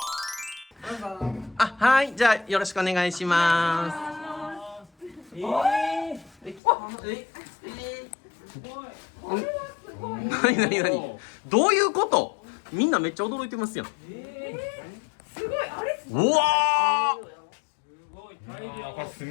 どうぞ。はい、じゃあ、よろしくお願いします。何どういうこと？みんなめっちゃ驚いてますやん。すごい、あれうわこれ住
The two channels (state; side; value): drops out; right; at 6.6 s